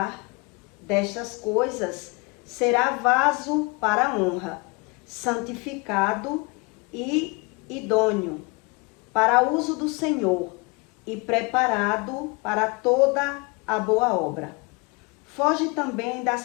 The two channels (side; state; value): right; quieter; 29.2 dB